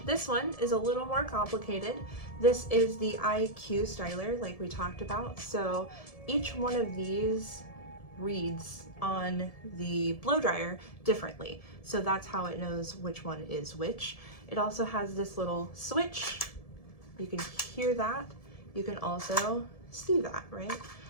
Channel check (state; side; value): late; right; 1.7 ms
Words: This one is a little more complicated. This is the IQ styler, like we talked about. So each one of these reads on the blow dryer differently. So that's how it knows which one is which. It also has this little switch. You can hear that. You can also see that, right?